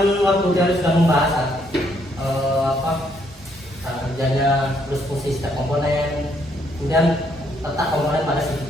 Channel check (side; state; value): both; normal; correlation 0.71